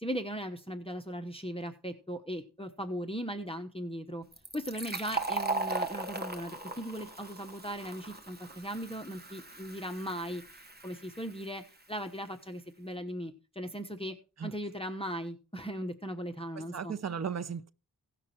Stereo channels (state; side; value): normal; both; correlation 0.40